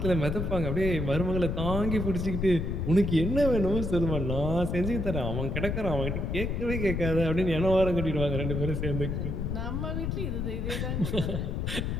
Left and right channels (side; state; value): left; noise; rumble, 2 dB below the sound